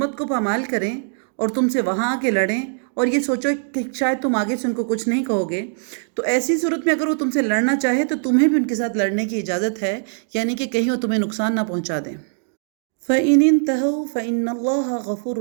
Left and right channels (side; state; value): left; silent; digital silence